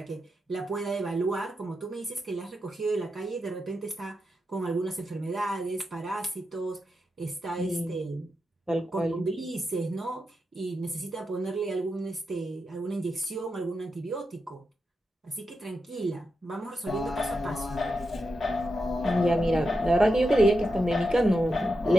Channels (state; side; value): normal; both; correlation 0.87